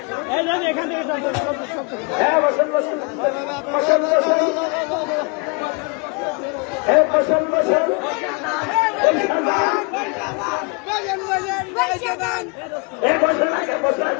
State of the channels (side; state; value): right; quieter; 32.1 dB